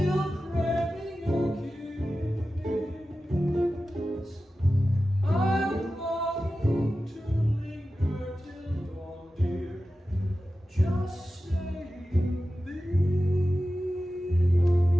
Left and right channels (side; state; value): both; normal; correlation 0.94